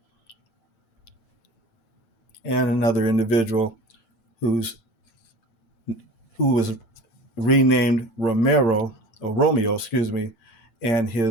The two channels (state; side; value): late; right; 8.0 ms